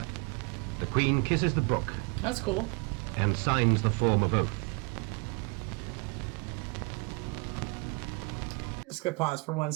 The Queen kisses the book That's cool. and signs the form of oath. Let's go pause for 1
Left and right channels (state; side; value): quieter; left; 31.9 dB